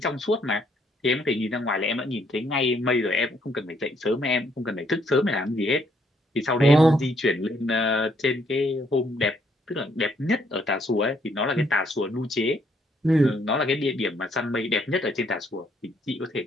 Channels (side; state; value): both; normal; correlation 0.69